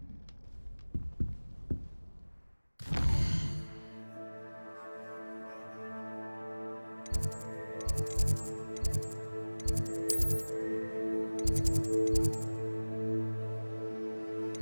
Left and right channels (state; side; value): inverted; both; correlation -1.00